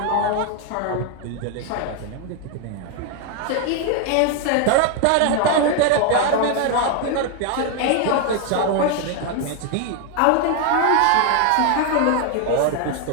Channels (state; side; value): different; both; correlation 0.01